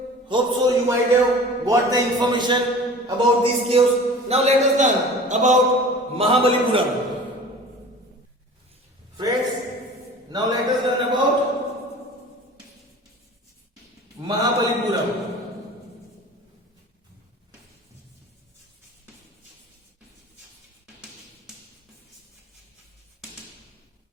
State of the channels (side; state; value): both; normal; correlation 0.41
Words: hope so you might have got the information about these caves. Now let us learn about Mahabalipuram. Friends, now let us learn about Mahabalipuram.